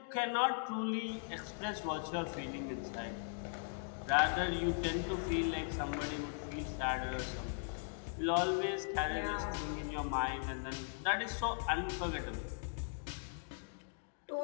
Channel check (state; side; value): silent; right; digital silence